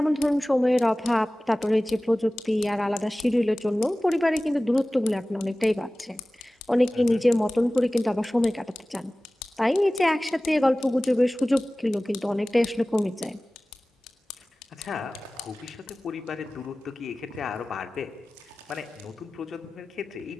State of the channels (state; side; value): normal; both; correlation 0.97